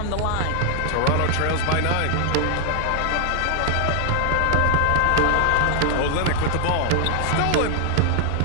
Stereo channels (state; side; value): different; both; correlation 0.00